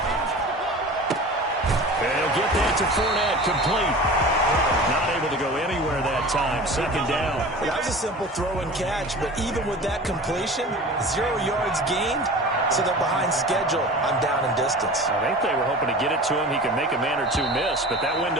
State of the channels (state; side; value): normal; both; correlation 0.37